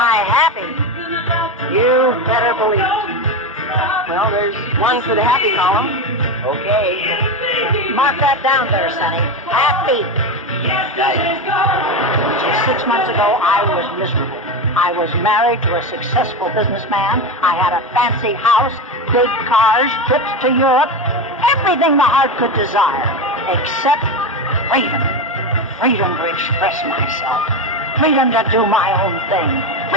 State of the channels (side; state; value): both; normal; correlation 0.17